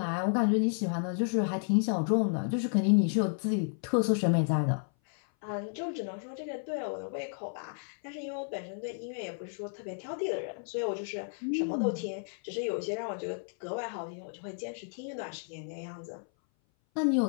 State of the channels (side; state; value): right; silent; 56 dB below the other